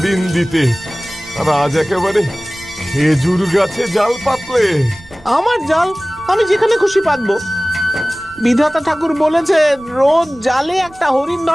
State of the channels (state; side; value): noise; right; rumble, 24 dB below the sound